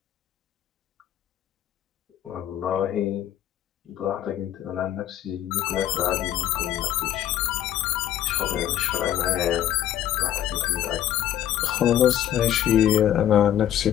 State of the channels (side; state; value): right; quieter; 11.5 dB